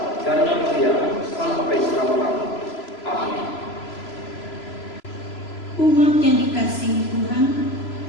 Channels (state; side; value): late; right; 3.0 ms